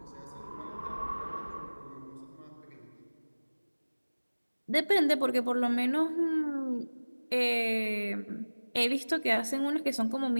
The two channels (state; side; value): inverted; both; correlation -1.00